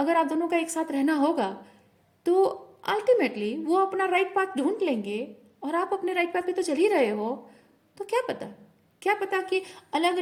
आप दोनों का एक साथ रहना होगा तो अल्टीमेटली वो अपना राइट पाथ ढूंढ लेंगे और आप अपने राइट पाथ पे तो चल ही रहे हो। तो क्या पता कि अलग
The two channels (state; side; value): identical; both; correlation 1.00